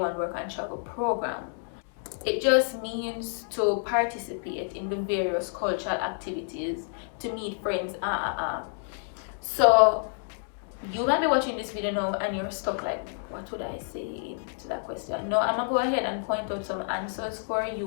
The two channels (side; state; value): right; silent; digital silence